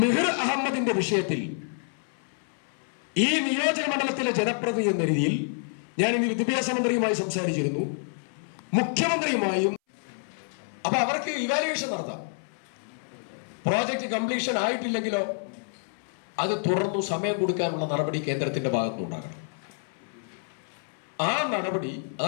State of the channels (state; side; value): silent; right; 59 dB below the other